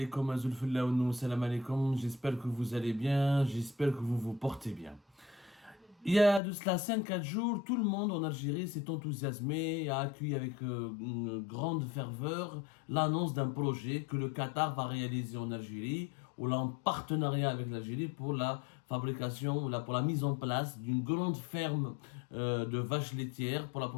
que vous allez bien, j'espère que vous vous portez bien. Il y a de cela 5-4 jours, tout le monde en Algérie s'est enthousiasmé et a accueilli avec une grande ferveur l'annonce d'un projet que le Qatar va réaliser en Algérie, ou là en partenariat avec l'Algérie pour la fabrication, pour la mise en place d'une grande ferme de vaches laitières pour la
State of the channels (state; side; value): drops out; right; at 6.4 s